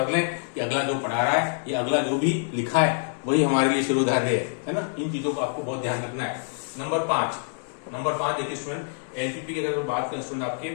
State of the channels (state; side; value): silent; right; digital silence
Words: लें कि अगला जो पढ़ा रहा है या अगला जो भी लिखा है वही हमारे लिए शिरोधार्य है ना। इन चीजों को आपको बहुत ध्यान रखना है। नंबर 5 देखिए स्टूडेंट, एलपीपी की अगर बात करें स्टूडेंट आपके,